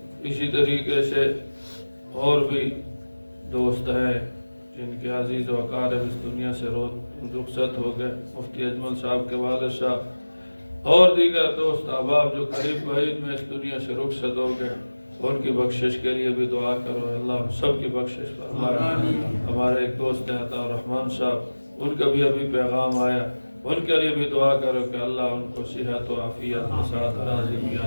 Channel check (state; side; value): inverted; both; correlation -1.00